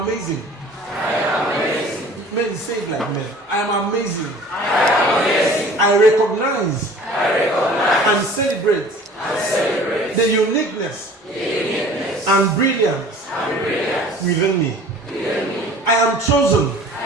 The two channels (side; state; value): both; normal; correlation 0.46